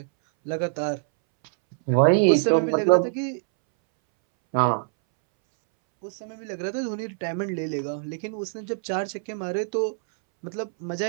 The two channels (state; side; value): silent; left; 62 dB below the other